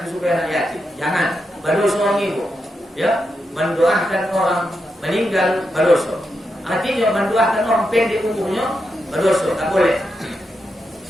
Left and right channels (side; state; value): both; normal; correlation 0.85